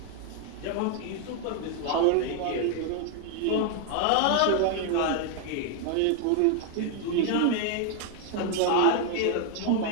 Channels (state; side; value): different; both; correlation 0.00